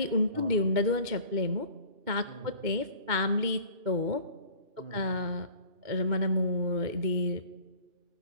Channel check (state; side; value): late; left; 2.2 ms